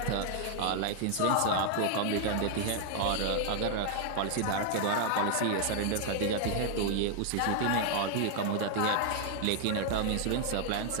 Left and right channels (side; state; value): both; different; correlation 0.00